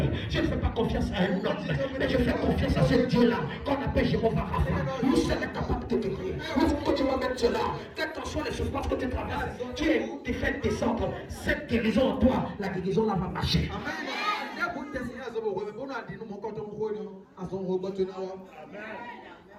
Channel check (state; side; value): identical; both; correlation 1.00